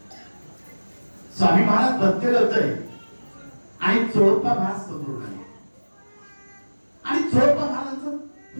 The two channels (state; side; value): inverted; both; correlation -1.00